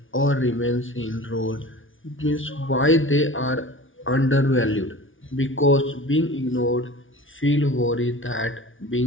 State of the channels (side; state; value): right; late; 0.57 ms